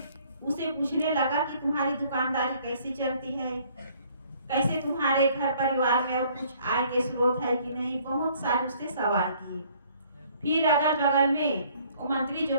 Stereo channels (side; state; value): both; inverted; correlation -0.60